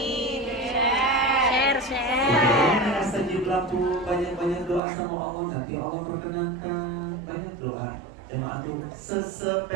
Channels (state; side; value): drops out; left; at 4.8 s